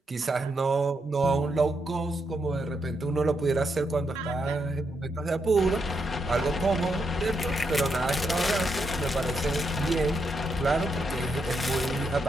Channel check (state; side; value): normal; both; correlation 0.81